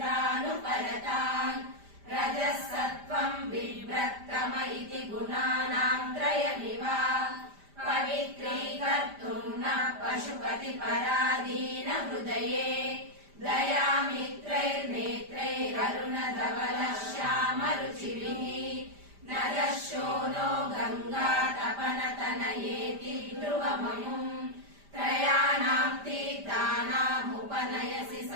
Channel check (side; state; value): left; late; 5.0 ms